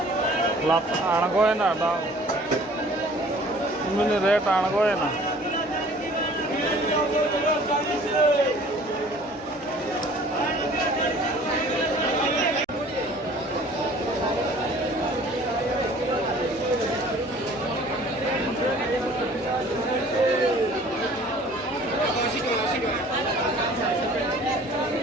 lap aanagoy na da mini rate aanagoy na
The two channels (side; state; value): both; normal; correlation 0.51